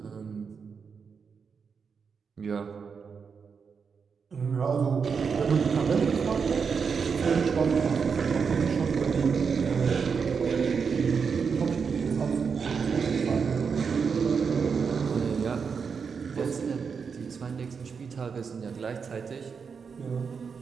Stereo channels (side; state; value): left; quieter; 5.9 dB